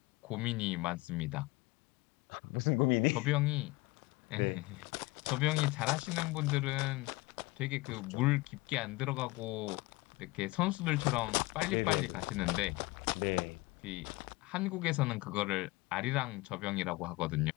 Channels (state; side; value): quieter; right; 22.2 dB